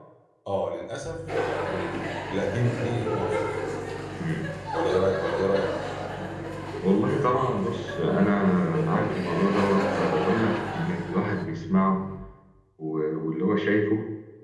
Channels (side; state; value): both; identical; correlation 1.00